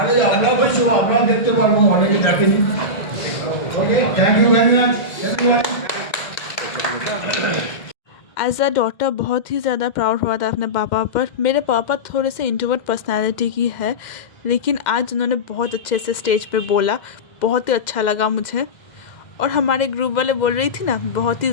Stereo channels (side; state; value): right; late; 2.0 ms